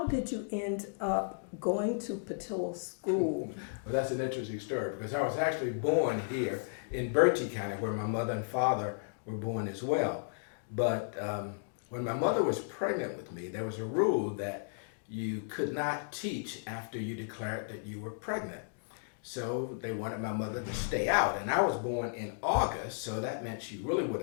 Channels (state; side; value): silent; right; digital silence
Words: did you end up going to Patillo School? Well, that's an interesting story because I was actually born here in Berkeley County where my mother and father were born as well. But when my mother was pregnant with me, there was a rule that you could not teach after you declared that you were pregnant. So they wanted my mother to stay out. And I was born in August, so that meant she really would